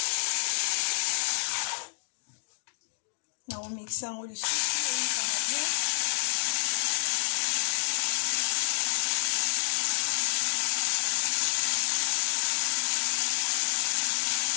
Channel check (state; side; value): silent; right; digital silence